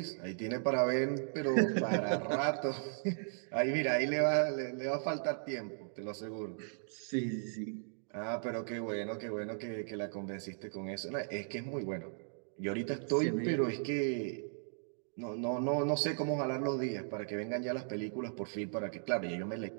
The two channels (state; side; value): silent; left; digital silence